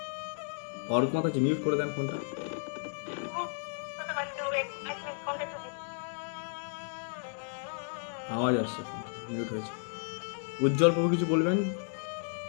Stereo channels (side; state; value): right; silent; digital silence